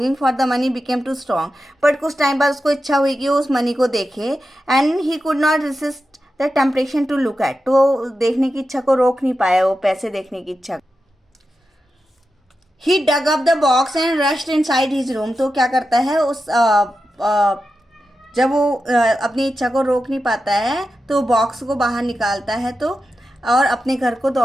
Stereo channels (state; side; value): normal; both; correlation 0.90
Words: for the money became too strong, but कुछ टाइम बाद उसको इच्छा हुई कि वो उस मनी को देखे। And he could not resist the temptation to look at, तो देखने की इच्छा को रोक नहीं पाया, वो पैसे देखने की इच्छा। He dug up the box and rushed inside his room. तो क्या करता है उस जब वो अपनी इच्छा को रोक नहीं पाता है तो बॉक्स को बाहर निकालता है तो और अपने घर को